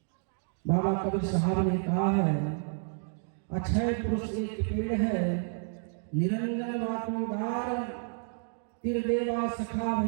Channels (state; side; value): silent; left; 58 dB below the other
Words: बाबा कबीर साहब ने कहा है, अक्षय पुरुष एक पेड़ है, निरंजन वातोदार, तिरदेवा सखा